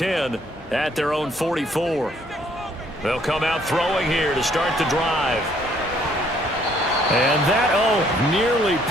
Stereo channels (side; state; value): both; normal; correlation 0.65